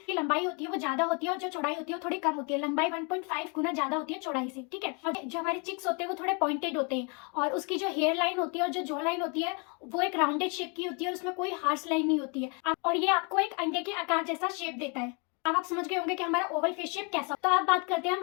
लंबाई होती है वो ज्यादा होती है और जो चौड़ाई होती है वो थोड़ी कम होती है। लंबाई 1.5 गुना ज्यादा होती है चौड़ाई से, ठीक है। और जो हमारे चिक्स होते हैं वो थोड़े पॉइंटेड होते हैं और उसकी जो हेयर लाइन होती है और जो जॉ लाइन होती है वो एक राउंडेड शेप की होती है, उसमें कोई हार्श लाइन नहीं होती है और ये आपको एक अंडे के आकार जैसा शेप देता है। अब आप समझ गए होंगे कि हमारा ओवल फेस शेप कैसा। तो आप बात करते हैं हम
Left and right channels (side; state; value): right; quieter; 34.2 dB